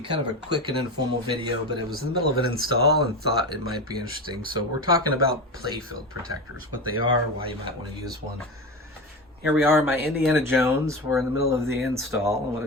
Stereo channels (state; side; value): normal; both; correlation 0.23